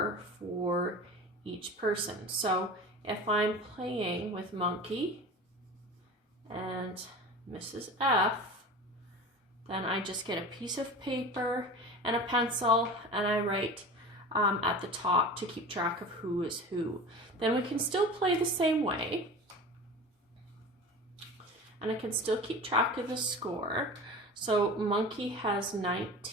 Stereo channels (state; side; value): normal; both; correlation 0.34